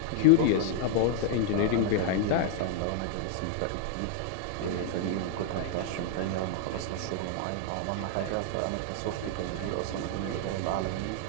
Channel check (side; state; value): both; different; correlation 0.00